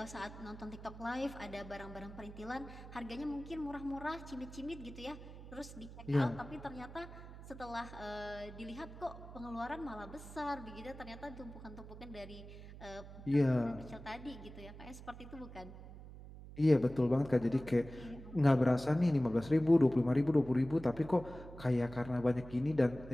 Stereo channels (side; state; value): right; noise; hum, 14 dB below the sound